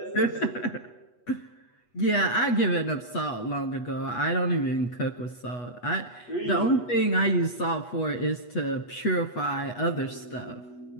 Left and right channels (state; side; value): late; right; 8.2 ms